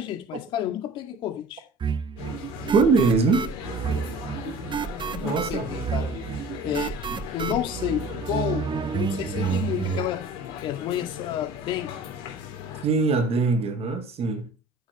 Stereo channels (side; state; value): both; normal; correlation 0.44